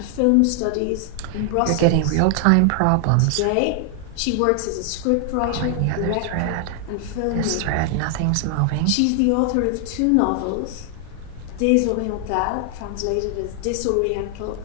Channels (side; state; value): both; different; correlation 0.00